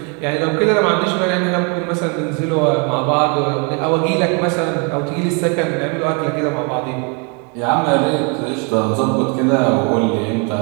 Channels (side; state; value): left; quieter; 35.0 dB